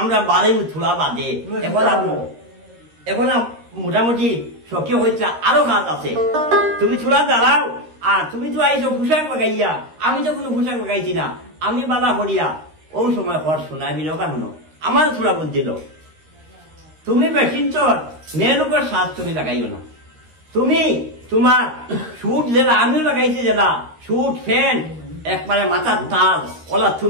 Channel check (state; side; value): late; left; 13 ms